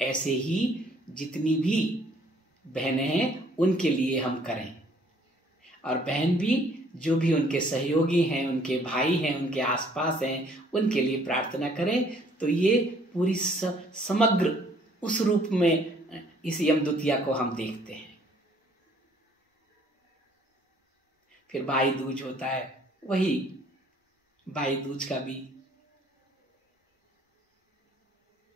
ऐसे ही जितनी भी बहनें हैं उनके लिए हम करें। और बहन भी जो भी उनके सहयोगी हैं, उनके भाई हैं, उनके आसपास हैं, उनके लिए प्रार्थना करें। तो ये पूरी समग्र उस रूप में इस यम द्वितीया को हम देखते हैं। फिर भाई दूज होता है, वही भाई दूज का भी।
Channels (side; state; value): both; normal; correlation 0.61